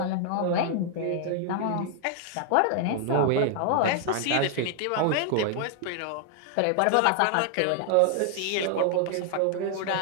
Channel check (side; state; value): both; different; correlation 0.00